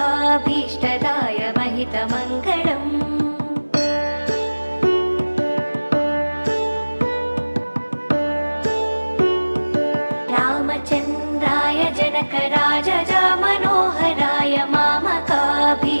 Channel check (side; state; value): both; inverted; correlation -1.00